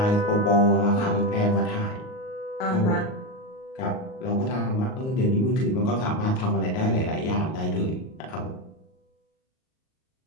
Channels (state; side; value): late; right; 38 ms